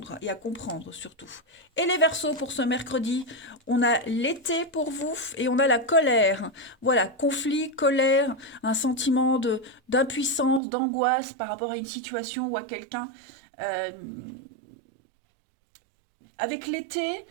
et à comprendre surtout. Et les Verseaux pour ce mercredi, on a l'été pour vous et on a la colère. Voilà, conflit, colère, un sentiment d'impuissance, d'angoisse par rapport à une situation ou à quelqu'un. Avec l'été,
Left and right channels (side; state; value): left; drops out; at 10.6 s